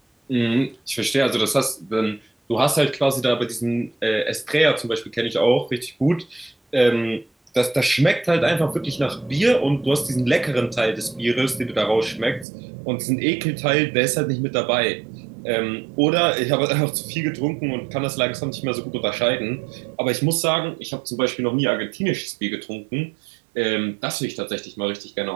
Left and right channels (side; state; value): left; drops out; at 12.5 s